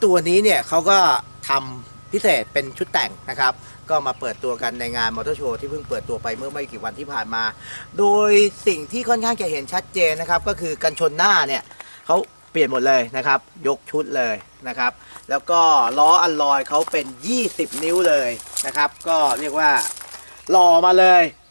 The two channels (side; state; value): both; inverted; correlation -1.00